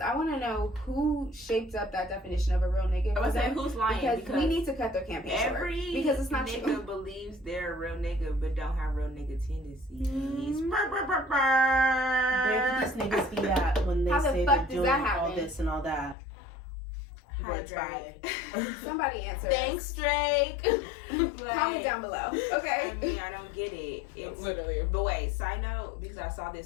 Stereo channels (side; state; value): right; drops out; at 16.2 s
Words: I want to know who shaped up that definition of a real nigga. I was saying who's lying, because we need to cut their campaign short. Because it's not nigga true. believes they're a real nigga but don't have real nigga tendencies. Where did these niggas be at when they say they're doing all this and all that? Hi, Drake. Somebody answer. Thanks, Drake. Comment down below. Okay. I mean, I don't get it. It's literally. But wait, side note, because I saw